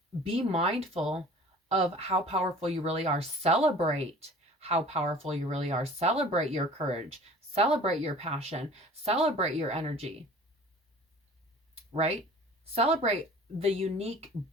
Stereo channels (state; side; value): normal; both; correlation 0.45